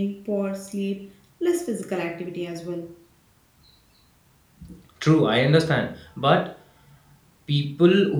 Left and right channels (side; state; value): both; identical; correlation 1.00